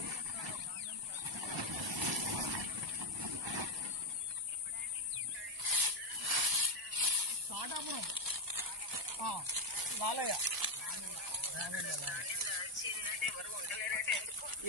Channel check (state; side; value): normal; both; correlation 0.03